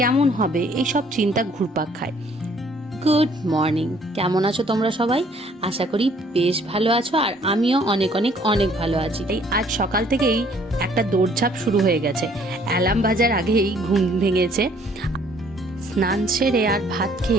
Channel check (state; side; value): normal; both; correlation 0.61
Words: হবে, এইসব চিন্তা ঘুরপাক খায়। গুড মর্নিং, কেমন আছো তোমরা সবাই? আশা করি বেশ ভালো আছো, আর আমিও অনেক অনেক অনেক ভালো আছি। এই আজ সকাল থেকেই একটা দৌড়ঝাঁপ শুরু হয়ে গেছে। অ্যালার্ম বাজার আগেই ঘুম ভেঙেছে। স্নান সেরে আর ভাত